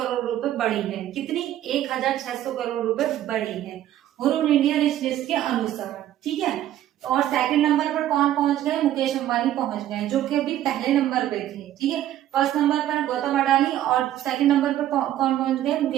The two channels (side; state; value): left; quieter; 12.5 dB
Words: रुपए बढ़ी है। कितनी? 1600 करोड़ रुपए बढ़ी है ह्रून इंडिया रिच लिस्ट के अनुसार। ठीक है, और सेकंड नंबर पर कौन पहुंच गए? मुकेश अंबानी पहुंच गए जो कि अभी पहले नंबर पे थे। ठीक है, फर्स्ट नंबर पर गौतम अडानी और सेकंड नंबर पर कौन पहुंच गए?